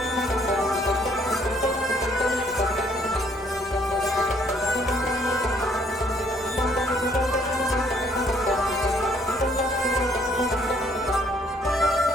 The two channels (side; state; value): both; normal; correlation 0.64